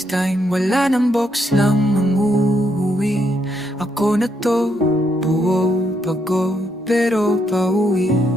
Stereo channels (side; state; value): both; normal; correlation 0.76